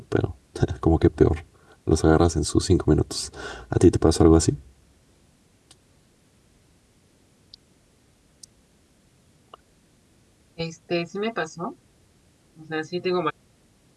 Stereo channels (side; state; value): both; identical; correlation 1.00